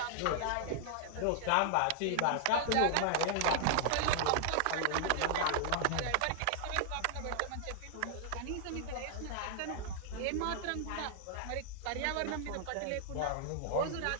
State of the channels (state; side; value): different; both; correlation 0.00